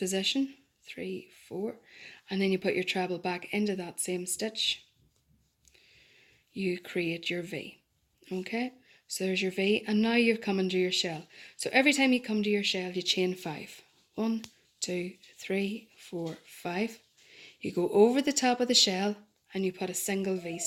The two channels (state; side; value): identical; both; correlation 1.00